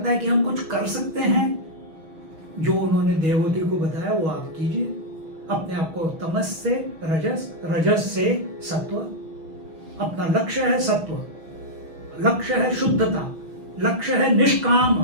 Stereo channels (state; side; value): late; left; 6.2 ms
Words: है कि हम कुछ कर सकते हैं, जो उन्होंने देवहूति को बताया वो आप कीजिए। अपने आप को तमस से रजस, रजस से सत्व। अपना लक्ष्य है सत्व, लक्ष्य है शुद्धता, लक्ष्य है निष्काम